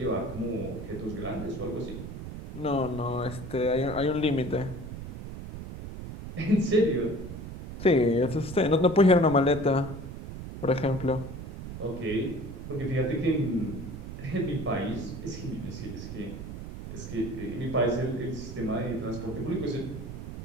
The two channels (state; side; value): noise; right; rumble, 9 dB below the sound